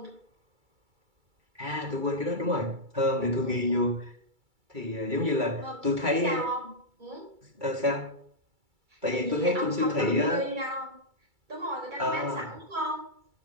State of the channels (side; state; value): left; late; 2.3 ms